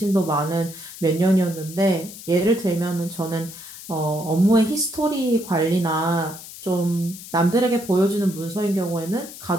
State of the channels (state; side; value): noise; left; hiss, 14 dB below the sound